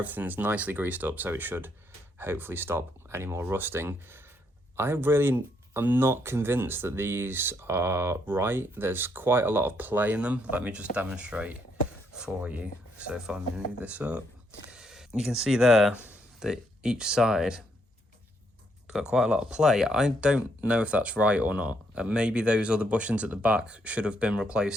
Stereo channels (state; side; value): normal; both; correlation 0.74